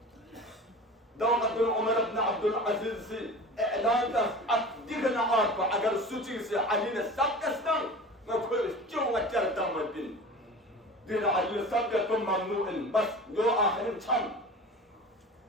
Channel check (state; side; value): normal; both; correlation 0.36